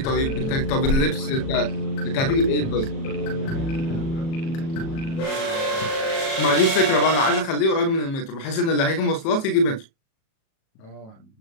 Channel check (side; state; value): right; late; 37 ms